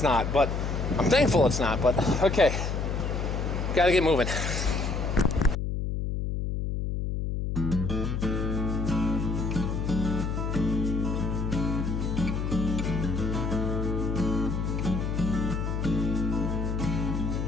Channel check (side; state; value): left; noise; hum, 1 dB below the sound